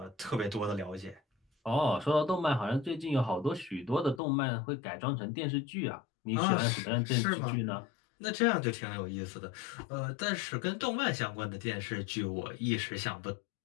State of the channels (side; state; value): right; drops out; at 4.2 s